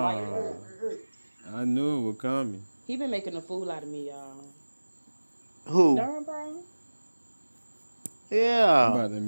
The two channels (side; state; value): both; inverted; correlation -1.00